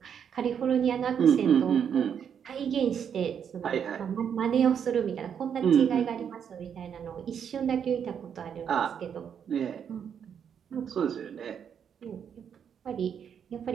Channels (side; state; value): left; quieter; 7.9 dB